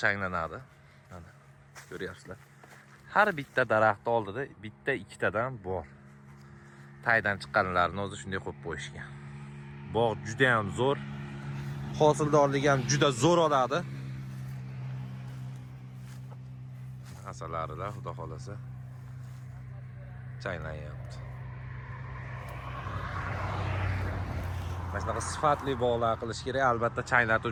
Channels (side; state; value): both; identical; correlation 1.00